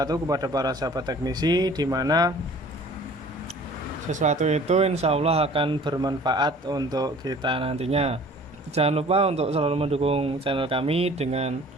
kepada para sahabat teknisi, di mana sesuatu itu insya Allah akan bermanfaat untuk kita nantinya. Jangan lupa untuk selalu mendukung channel kami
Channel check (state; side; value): normal; both; correlation 0.49